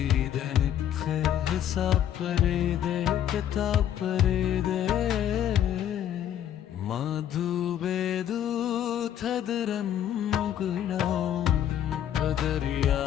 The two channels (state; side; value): quieter; right; 10.4 dB